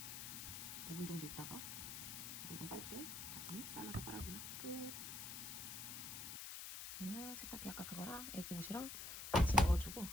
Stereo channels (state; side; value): noise; left; hiss, 6 dB below the sound